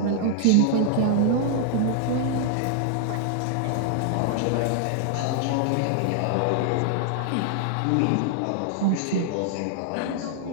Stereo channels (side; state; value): both; different; correlation -0.01